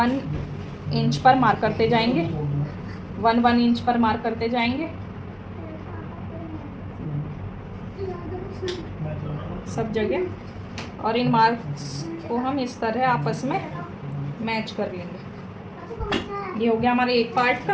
इंच पर मार्क करते जाएंगे, 1 इंच पर मार्क करते जाएंगे सब जगह, और इन मार्क्स को हम इस तरह आपस में मैच कर लेंगे। ये हो गया हमारे एक पार्ट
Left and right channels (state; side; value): identical; both; correlation 1.00